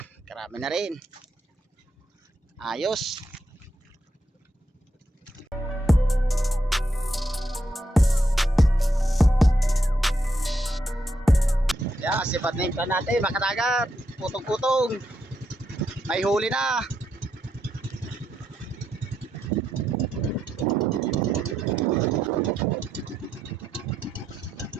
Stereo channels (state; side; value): normal; both; correlation 0.81